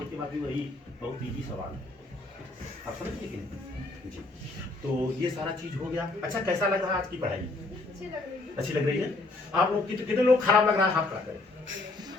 के बाकी वही बहुत इजी सवाल है। आप समझिए कि नहीं जी? तो ये सारा चीज हो गया। अच्छा, कैसा लग रहा है आज की पढ़ाई? अच्छी लग रही है। आप लोग कितने लोग खराब लग रहा है? हाथ खड़ा करें।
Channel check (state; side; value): quieter; right; 3.1 dB